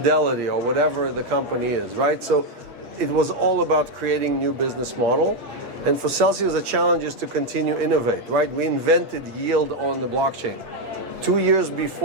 or whatever the company is, right? So it was all about creating new business model. And for Celsius, the challenge is to continue innovate, right? We invented yield on the blockchain. 2 years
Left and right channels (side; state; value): left; late; 8.5 ms